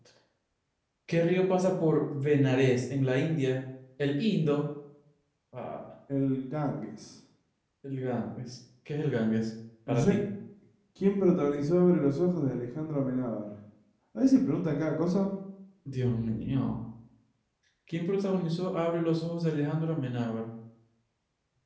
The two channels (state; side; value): identical; both; correlation 1.00